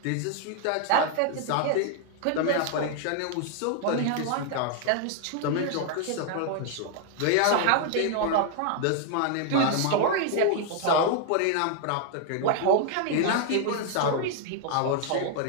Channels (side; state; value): both; different; correlation 0.00